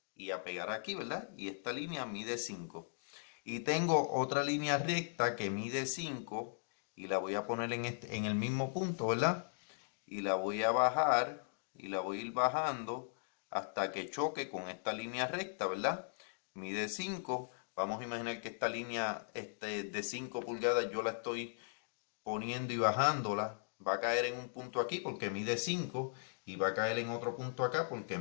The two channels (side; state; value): right; silent; digital silence